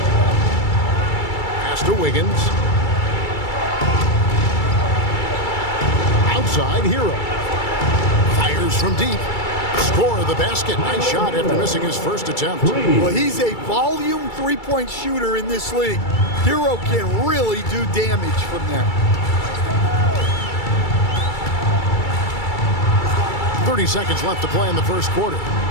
Pass to Wiggins. Outside, Hero. Fires from deep. Score of the basket. Nice shot after missing his first attempt. Well, he's a volume three-point shooter in this league. Hero can really do damage from there. 30 seconds left to play in the first quarter.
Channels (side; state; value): right; late; 2.3 ms